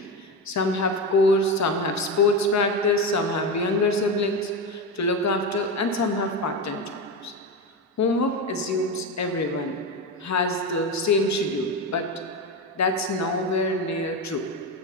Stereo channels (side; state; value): both; normal; correlation 0.17